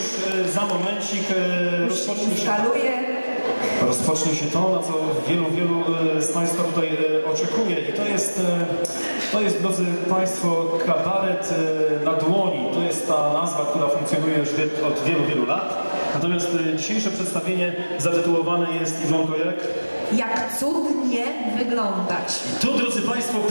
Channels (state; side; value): inverted; both; correlation -1.00